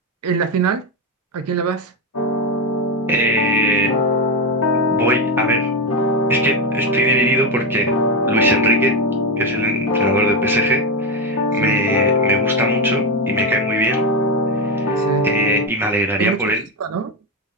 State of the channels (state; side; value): normal; both; correlation 0.11